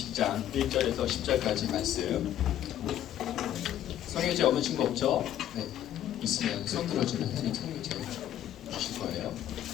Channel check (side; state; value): right; quieter; 11.5 dB